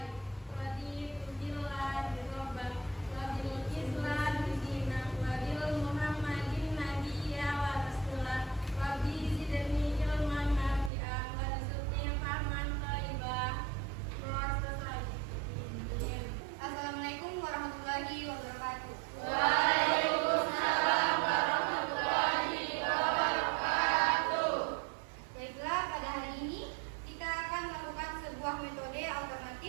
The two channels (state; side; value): drops out; left; at 10.9 s